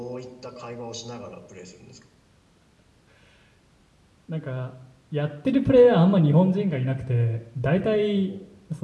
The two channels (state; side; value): identical; both; correlation 1.00